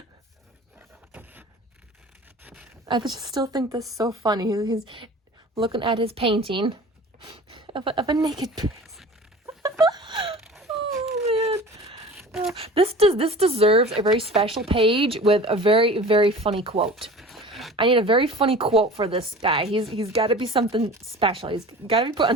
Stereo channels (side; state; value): both; normal; correlation 0.40